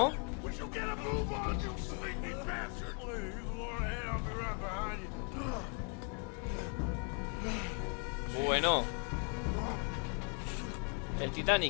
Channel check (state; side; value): quieter; right; 39.2 dB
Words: Would you get a move on, you sleepy bastard? Please, you go on ahead, I'll be right behind you. Bueno. El